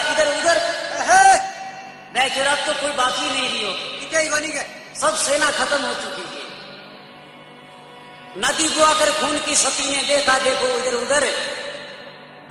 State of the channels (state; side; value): identical; both; correlation 1.00